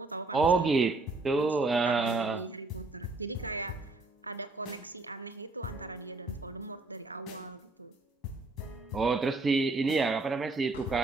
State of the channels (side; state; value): left; quieter; 3.4 dB